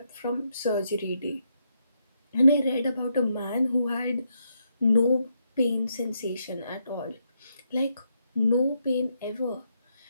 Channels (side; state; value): both; inverted; correlation -0.80